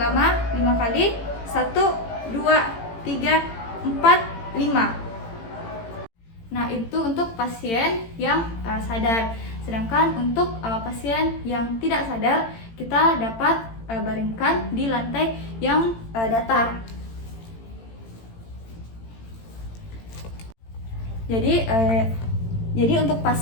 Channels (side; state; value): right; late; 18 ms